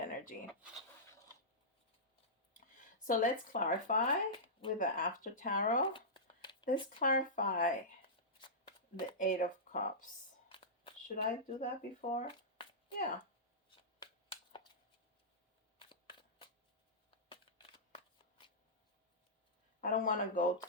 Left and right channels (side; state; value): both; normal; correlation -0.15